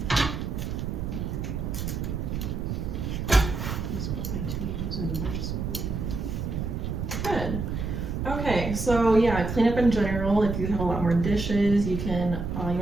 so yeah, cleanup in general. If you have a lot more dishes, you can you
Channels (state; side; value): noise; right; rumble, 3 dB below the sound